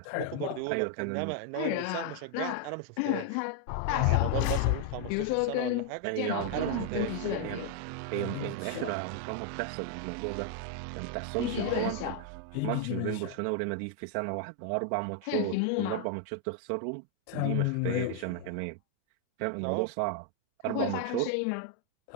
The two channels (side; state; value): both; different; correlation 0.00